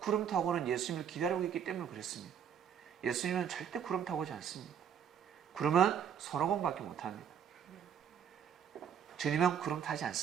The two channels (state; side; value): quieter; left; 8.3 dB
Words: 타고는 예수님을 기다리고 있기 때문에 그랬습니다. 예수님은 절대 구름 타고 오지 않습니다. 그러면 손오공밖에 못합니다. 주님은 구름 타지